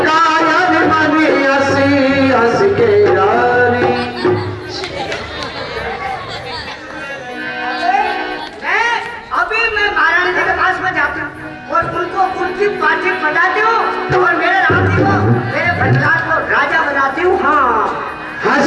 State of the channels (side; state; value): both; identical; correlation 1.00